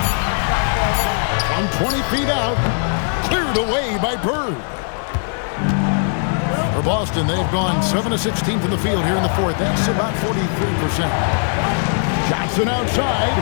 From 20 feet out. Cleared away by Bird. For Boston, they've gone 7 of 16 from the field here in the 4th. That's about 43%. Johnson outside.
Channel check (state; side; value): silent; right; 57 dB below the other